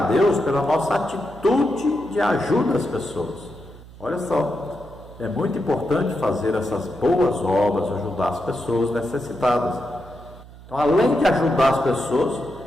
a Deus pela nossa atitude de ajuda às pessoas. Olha só, é muito importante fazer essas boas obras, ajudar as pessoas necessitadas. Então, além de ajudar as pessoas,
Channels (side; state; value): right; noise; hum, 19 dB below the sound